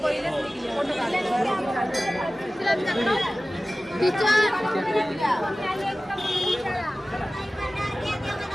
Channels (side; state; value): both; normal; correlation 0.97